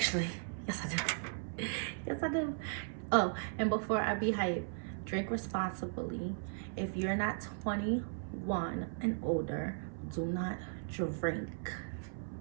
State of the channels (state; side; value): silent; left; 53 dB below the other